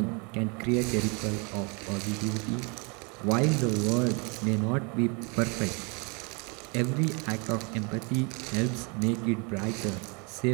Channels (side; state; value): left; quieter; 32.1 dB